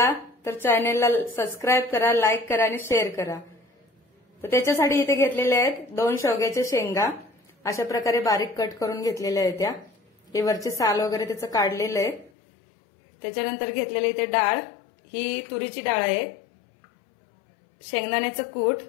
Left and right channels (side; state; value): right; drops out; at 12.3 s